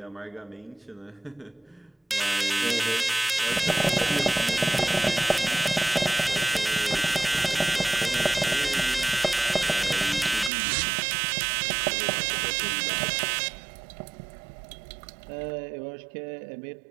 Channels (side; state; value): left; drops out; at 10.5 s